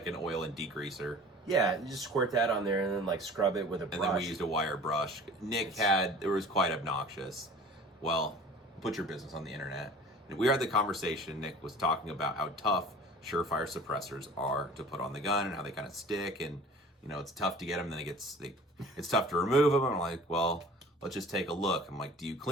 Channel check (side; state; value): both; normal; correlation 0.44